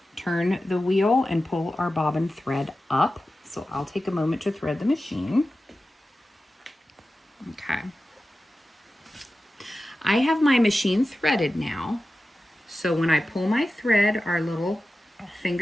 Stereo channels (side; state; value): both; normal; correlation 0.94